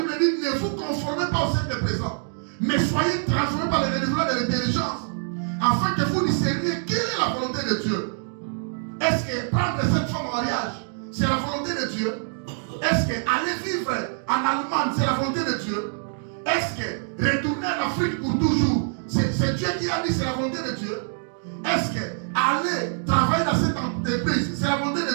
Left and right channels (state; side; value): silent; left; digital silence